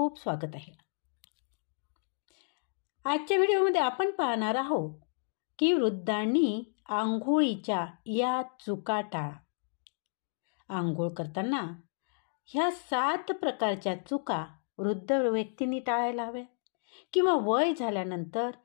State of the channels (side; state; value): right; silent; digital silence